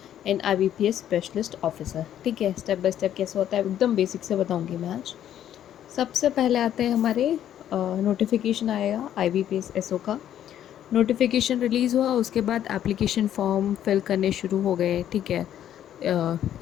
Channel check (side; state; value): right; quieter; 10.8 dB